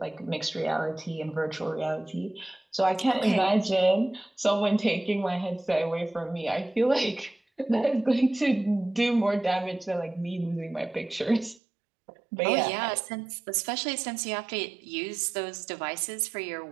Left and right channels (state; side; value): drops out; left; at 11.6 s